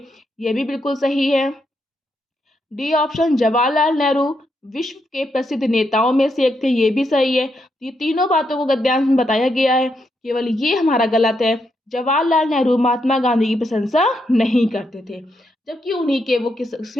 ये भी बिल्कुल सही है। डी ऑप्शन, जवाहरलाल नेहरू विश्व के प्रसिद्ध नेताओं में से एक थे, ये भी सही है। ये तीनों बातों को गद्यांश में बताया गया है, केवल ये हमारा गलत है। जवाहरलाल नेहरू महात्मा गांधी की प्रशंसा नहीं करते थे, जबकि उन्हीं के वो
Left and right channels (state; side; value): normal; both; correlation 0.80